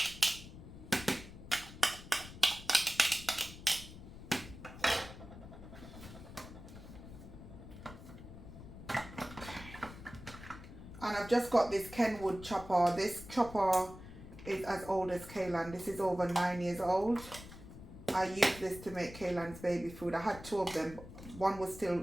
And I've just got this Kenwood chopper. This chopper is as old as Kaylan. This is over 9 years old. I used this to make Kaylan's baby food. I had 2 of them. One was still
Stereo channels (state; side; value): noise; left; rumble, 14 dB below the sound